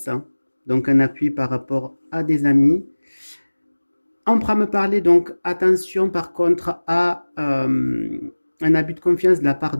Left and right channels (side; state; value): both; inverted; correlation -1.00